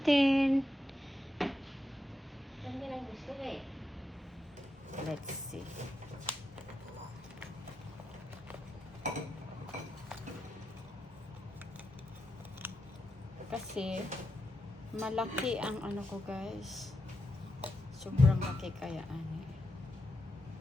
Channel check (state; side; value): normal; both; correlation 0.86